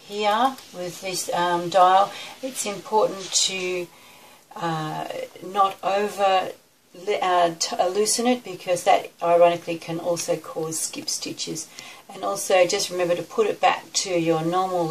here with this dial, it's important to not over loosen it, because that ironically can also cause skip stitches. And also just remember to put it back to your normal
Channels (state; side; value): identical; both; correlation 1.00